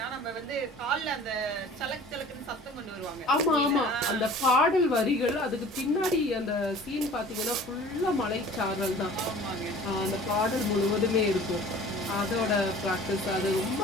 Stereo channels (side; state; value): both; normal; correlation 0.46